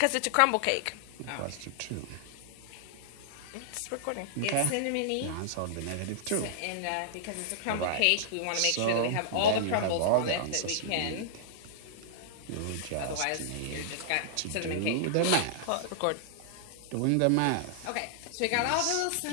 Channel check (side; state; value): both; different; correlation -0.01